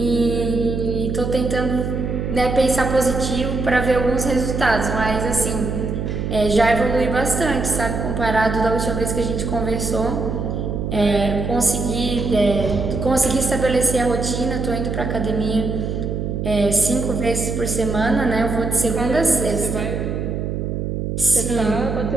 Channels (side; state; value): right; noise; hum, 3 dB below the sound